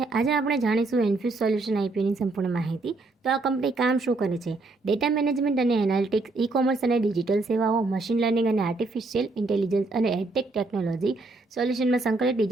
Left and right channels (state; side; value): quieter; left; 3.3 dB